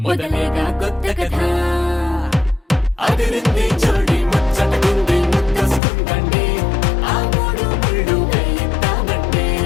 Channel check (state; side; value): drops out; right; at 5.8 s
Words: మొదలేగా కొత్త కథ అదిరింది జోడి ముచ్చటకుంది ముద్దొస్తుందండి ఆ మూడు ముళ్ళు వేయిద్దామండి